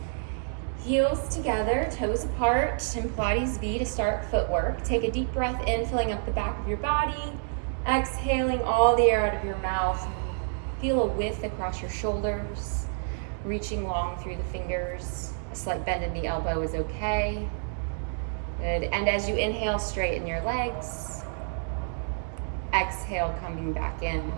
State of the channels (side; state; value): left; silent; digital silence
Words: Heels together, toes apart, in Pilates V to start footwork. Take a deep breath in, filling up the back of your body. Exhaling all the air out of your mouth. Feel a width across your shoulders, reaching long through the fingers. A slight bend in the elbow is okay. Good. And as you inhale, straighten your legs. Exhale, coming back in.